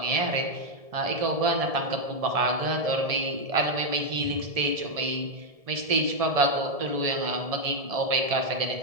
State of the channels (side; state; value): left; late; 1.7 ms